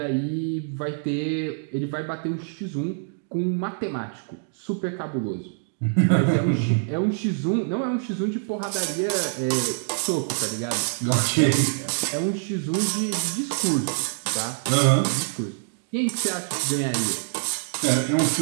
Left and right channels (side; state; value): left; silent; digital silence